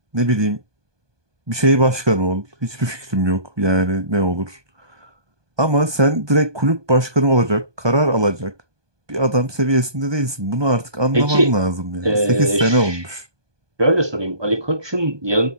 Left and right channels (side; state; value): left; late; 1.2 ms